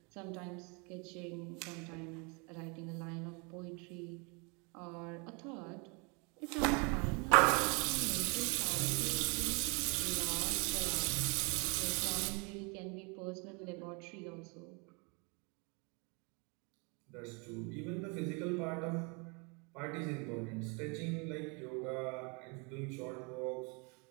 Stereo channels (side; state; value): left; quieter; 32.3 dB